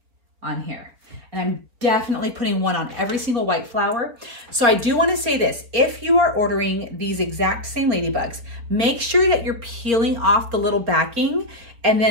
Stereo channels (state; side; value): late; left; 4.2 ms